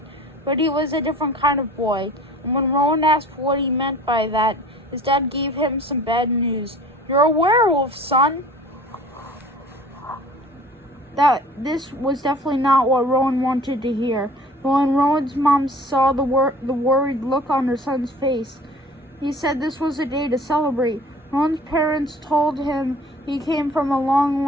but he was a different kind of boy. And when Rowan asked what he meant by that, his dad gave him some bad news. "You're a werewolf, son." This was definitely not what Rowan wanted to hear. But when Rowan's mom saw the worried look on her son's face, he said this was a day to celebrate. Rowan's parents told him he came from a long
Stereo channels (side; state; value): both; normal; correlation 0.46